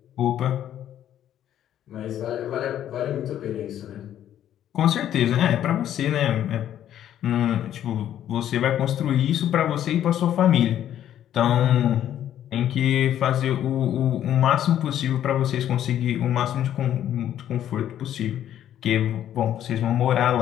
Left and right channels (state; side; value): quieter; right; 11.0 dB